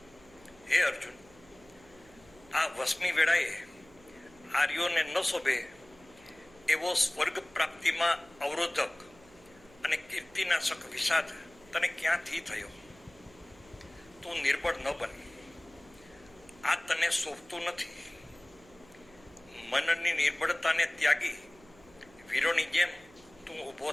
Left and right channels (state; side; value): noise; right; hum, 25 dB below the sound